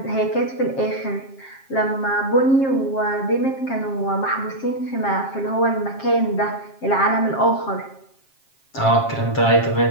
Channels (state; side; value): late; right; 7.5 ms